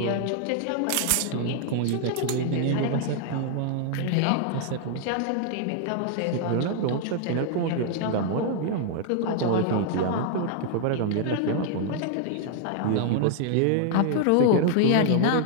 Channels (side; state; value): both; different; correlation 0.00